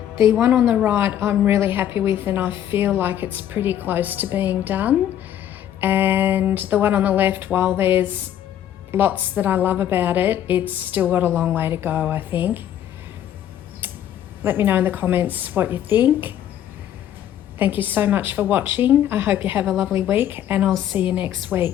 The one on the right I'm really happy with, and I feel like it's pretty close to being done. And the one on the left, while there's lots that I love about it, it's still got a long way to go, I think. Let me know in the comments what you think. Thank you so much for watching. I hope you have a lovely week, and I'll see you next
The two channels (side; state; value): right; quieter; 10.9 dB